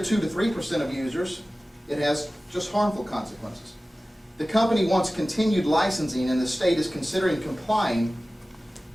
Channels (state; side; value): normal; both; correlation 0.97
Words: 2 to 3% of users, it has just harmful consequences. The company wants continued licensing, and the state is considering complying